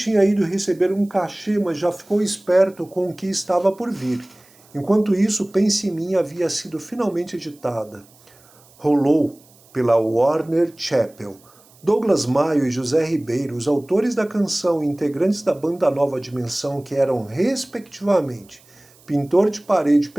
ido receber um cachê, mas já ficou esperto com o que estava por vir. Enquanto isso, Pense em Mim havia sido finalmente editada. Rolou pela Warner Chappell. Douglas Maio e José Ribeiro, os autores da canção e integrantes da banda Nova Dimensão, que eram, respectivamente, pintor de parede e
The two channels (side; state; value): right; noise; hiss, 28 dB below the sound